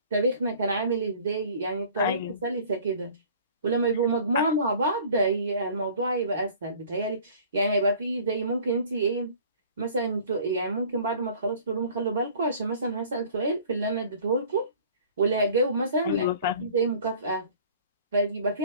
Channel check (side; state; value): both; inverted; correlation -0.49